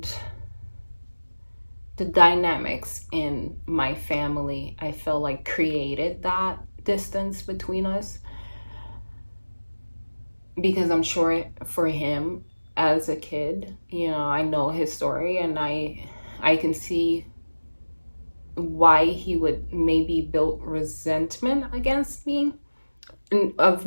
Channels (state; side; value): inverted; both; correlation -1.00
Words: the dynamics in my family, I feel like created that distance between us, because I'm sure for him as a kid, I know his story, and I can see why he would maybe build resentment against me, of